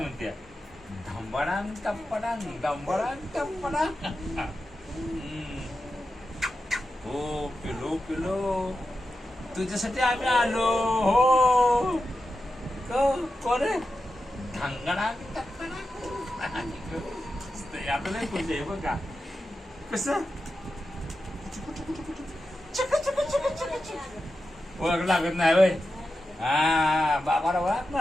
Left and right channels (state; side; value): normal; both; correlation 0.90